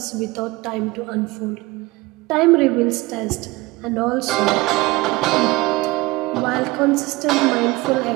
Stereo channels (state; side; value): quieter; left; 21.6 dB